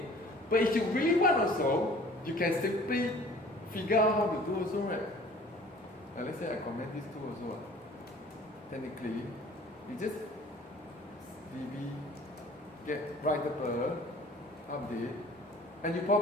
But if you really want also, you can simply figure out how to do also, right? Let's say I comment these two also. Technically, you just db get writable update, and you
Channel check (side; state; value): both; normal; correlation 0.50